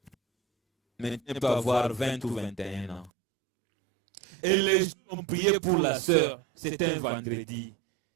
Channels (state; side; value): drops out; left; at 3.1 s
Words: maintenant peut avoir 20 ou 21 ans. Et les gens ont prié pour la sœur, c'était un vendredi.